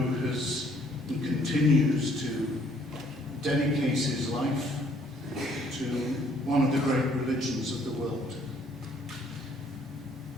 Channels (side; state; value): both; normal; correlation 0.63